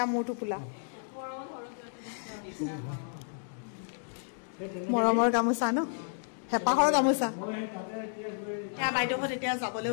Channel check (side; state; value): right; silent; digital silence